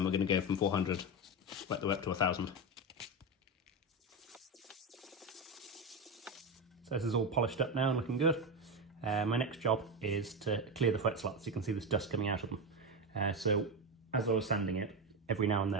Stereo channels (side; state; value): both; normal; correlation 0.16